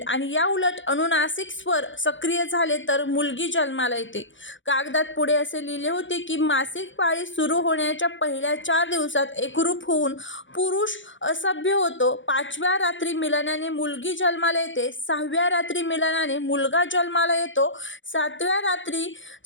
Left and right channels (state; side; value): late; right; 0.55 ms